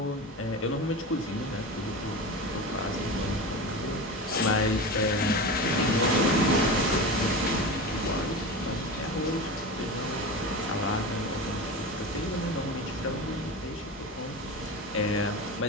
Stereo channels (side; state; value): both; normal; correlation 0.27